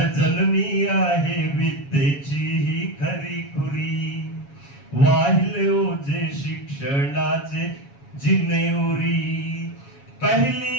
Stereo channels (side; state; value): right; late; 7.2 ms